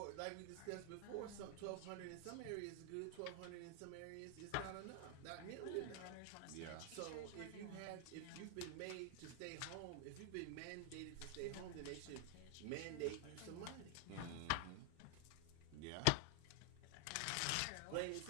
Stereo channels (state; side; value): different; both; correlation 0.00